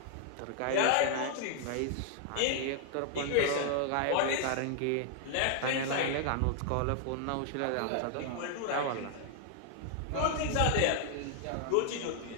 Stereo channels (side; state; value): both; different; correlation 0.00